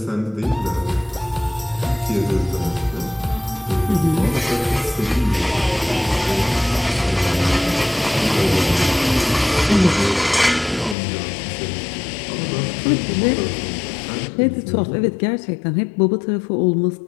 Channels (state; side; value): drops out; right; at 11.0 s